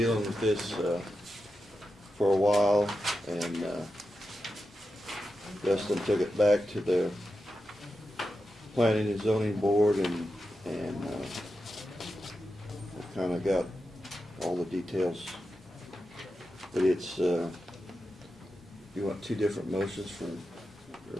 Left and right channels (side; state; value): both; normal; correlation 0.90